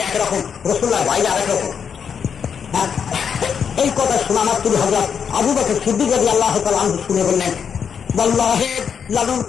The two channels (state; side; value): quieter; right; 7.1 dB